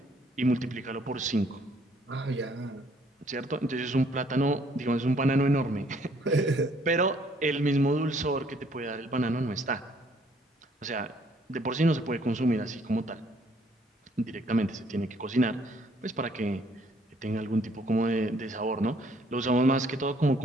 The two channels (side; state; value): both; normal; correlation 0.63